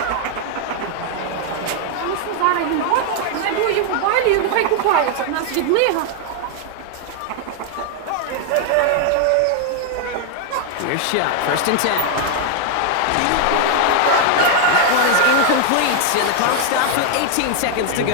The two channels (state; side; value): different; both; correlation 0.00